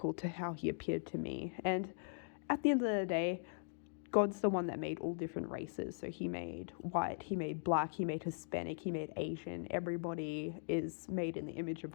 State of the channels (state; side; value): silent; right; digital silence